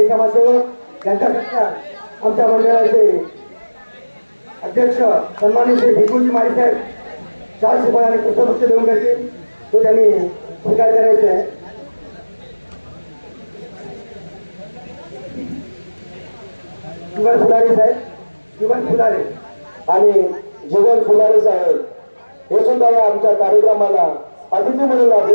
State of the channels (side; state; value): both; inverted; correlation -1.00